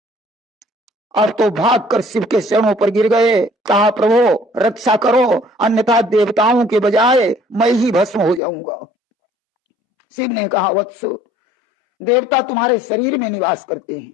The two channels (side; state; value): right; drops out; at 8.4 s